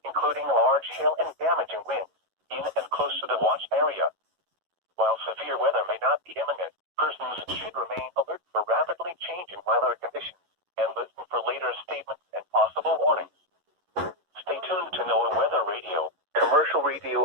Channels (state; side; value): late; left; 11 ms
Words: including large hail and damaging winds, in and close to the watch area. While severe weather may not be imminent, persons should remain alert for rapidly changing weather conditions and listen for later statements and possible warnings. Stay tuned to NOAA Weather Radio, commercial radio,